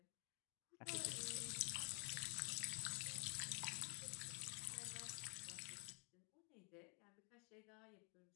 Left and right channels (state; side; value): quieter; right; 36.4 dB